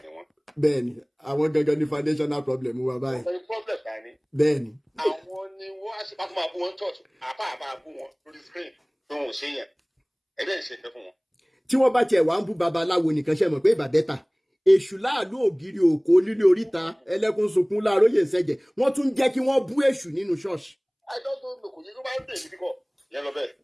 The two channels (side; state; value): both; identical; correlation 1.00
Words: ni wọ́n. Bẹ́ẹ̀ni, àwọn gangan ní foundational problem wa báyìí. Ọ̀pọ̀ problem ká ní. Bẹ́ẹ̀ni. Àwọn ni wọ́n á ṣe pàtó máa bú wọn church, àbá bú wọn lórí screen tó wọn ò ṣe yẹn. Ẹgbẹ́ ìṣe nǹkan fún wọn. Tí wọ́n bá tiẹ̀ wá ń bú babaláwo nìkan ṣe mọ̀ pé ìbàdẹ́ta. Èṣù láàlú ògiri òkò lílé oríta ẹlẹ́kùn sunkún láàróyè ìṣẹ̀jẹ̀. Wọ́n tún jẹ́ kí wọ́n bú èṣù nínú ṣọ́ọ̀ṣì. Àìdọ́gbọ̀n lò kò yẹ kó máa ń bèèrè kíkọ́ yẹn lọ bẹ́ẹ̀.